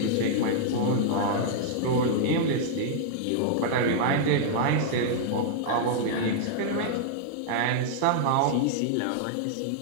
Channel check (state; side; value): different; both; correlation -0.01